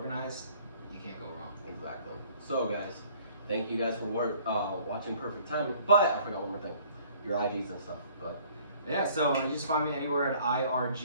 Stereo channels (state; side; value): inverted; both; correlation -0.56